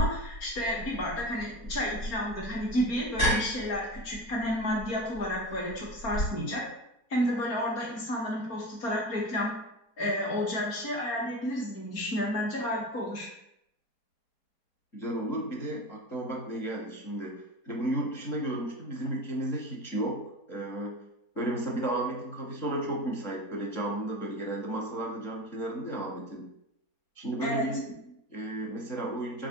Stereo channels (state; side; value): late; right; 4.4 ms